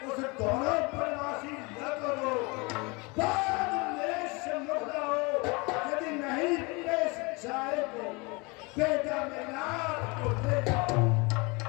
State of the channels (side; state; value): right; quieter; 27.6 dB